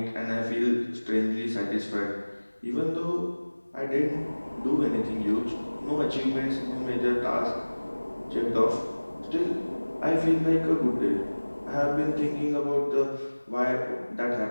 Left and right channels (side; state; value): both; inverted; correlation -1.00